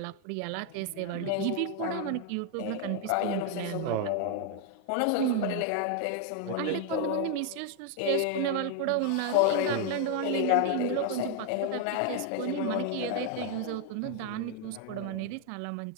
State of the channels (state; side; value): different; both; correlation 0.00